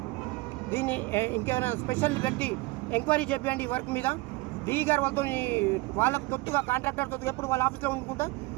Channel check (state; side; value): quieter; left; 22.5 dB